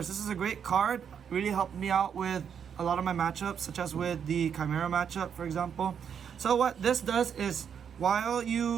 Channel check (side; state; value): left; quieter; 7.7 dB